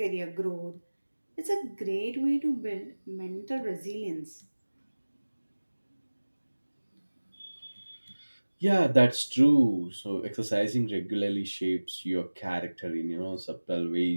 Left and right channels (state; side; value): inverted; both; correlation -1.00